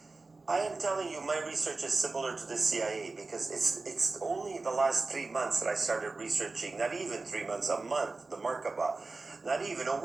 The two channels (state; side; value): quieter; left; 3.6 dB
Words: I am telling you, my research is similar to the CIA because it's only the last 3 months that I started researching. Not even 3 months, a month, the Merkaba. Not even a